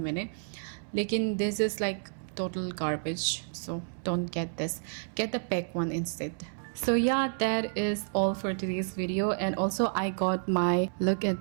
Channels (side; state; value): left; silent; 58 dB below the other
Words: लेकिन this is like total garbage, so don't get this, get the PAC one instead. So yeah, that is all for today's video. And also I got my, look at